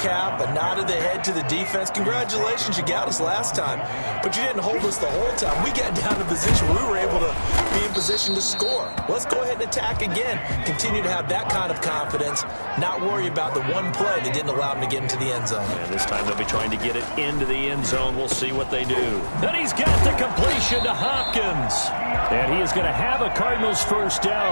a nod of the head to the defense. Congratulations, you got us last time. But you didn't hold us the whole time. We got down to position where we were able to be in position to score. Let's go ahead and attack again. Continue to have that kind of confidence, not worry about the one play that didn't allow them to get into the end zone. And this time they'll be trying to get it into the end zone. We'll see what they do. And he's got the completion to Hopkins. And he is going to have a Cardinals first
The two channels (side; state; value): both; inverted; correlation -1.00